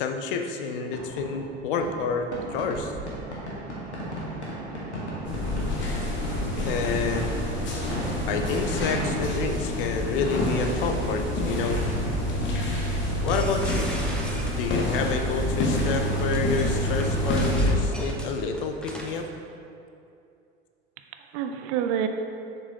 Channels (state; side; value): normal; both; correlation 0.24